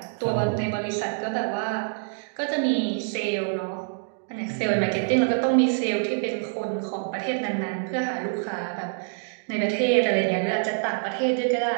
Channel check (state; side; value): silent; left; digital silence